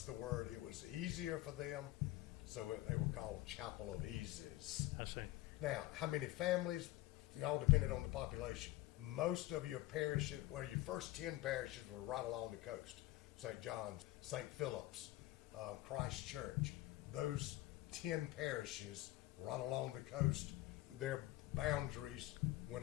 the word, it was easier for them, so they were called Chapel of Eases. I see. Now, how many families? It all depended on the population. Most of your parishes, well, your first 10 parishes were right along the coast. St. John's, St. Philip's, Christ Church. Those 10 parishes right along the coast, their boundaries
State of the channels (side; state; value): right; quieter; 17.4 dB